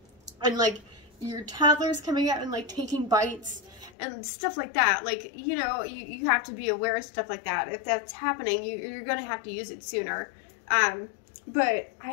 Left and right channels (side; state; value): right; drops out; at 4.0 s